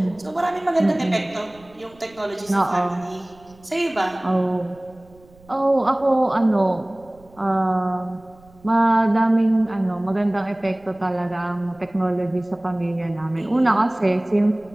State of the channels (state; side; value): noise; right; rumble, 27 dB below the sound